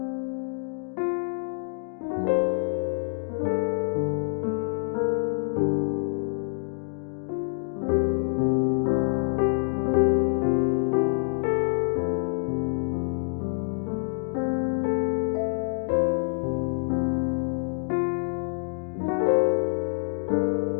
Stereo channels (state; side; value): silent; right; digital silence